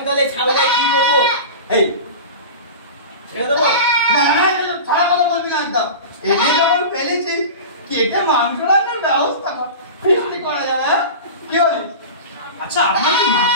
তাহলে ছাগলের কি করবো? এই ছেড়ে দেবো? না না, ছাড়া কথা বলবি না একদম। এনে যখন ফেলেছি কেটে মাংস রান্নার ব্যবস্থা কর, ফিস্টি করা যাবে। হ্যাঁ, কি বলিস? আচ্ছা, আপনার কি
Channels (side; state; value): both; inverted; correlation -0.31